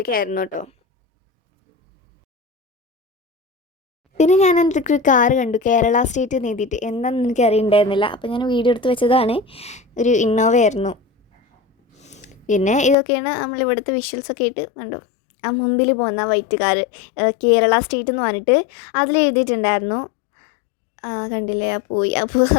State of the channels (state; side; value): drops out; right; at 13.0 s